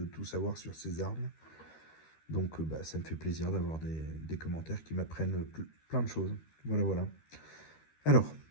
tout savoir sur ces armes. Donc ça me fait plaisir d'avoir des commentaires qui m'apprennent plein de choses. Voilà. Alors,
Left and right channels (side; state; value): right; late; 13 ms